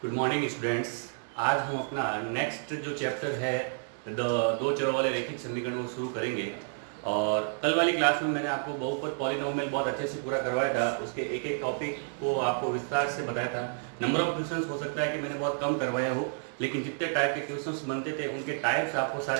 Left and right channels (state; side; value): silent; left; digital silence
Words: Good morning students. आज हम अपना नेक्स्ट जो चैप्टर है दो चरों वाले रैखिक समीकरण को शुरू करेंगे। और कल वाली क्लास में मैंने आपको बहुपद पॉलिनोमियल बहुत अच्छे से पूरा करवाया था, उसके एक एक टॉपिक को आपको विस्तार से बताया था। नंबर ऑफ क्वेश्चंस हो सकता है कि मैंने बहुत कम करवाया हो, लेकिन जितने टाइप के क्वेश्चंस बनते थे उनके टाइप्स आपको